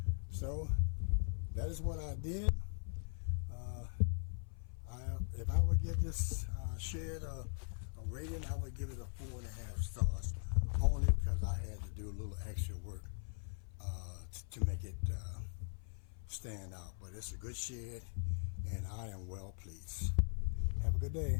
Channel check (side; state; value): right; silent; 51 dB below the other